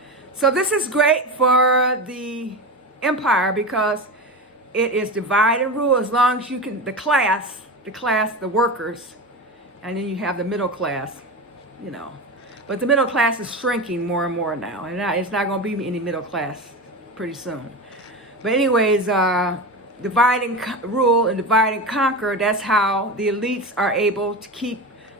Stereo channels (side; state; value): both; normal; correlation 0.24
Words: So this is great for the empire because it is divide and rule as long as you can, the workers, and then you have the middle class, you know. But the middle class is shrinking more and more now, and it's not going to be any middle class pretty soon. But anyways, divide and rule and divide and conquer, that's how the elites are able to keep